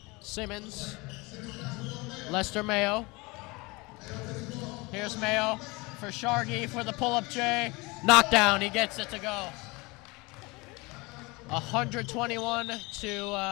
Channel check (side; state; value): right; quieter; 24.9 dB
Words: Simmons, Lester Mayo. Here's Mayo for Shargy for the pull-up J. Knockdown, he gets it to go. 121